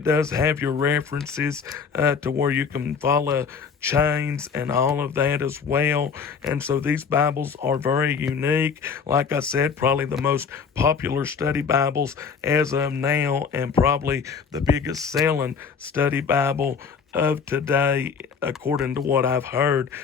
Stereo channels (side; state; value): right; quieter; 6.0 dB